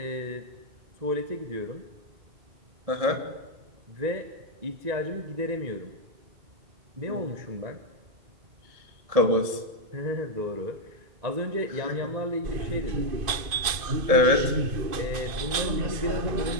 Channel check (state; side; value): late; left; 2.5 ms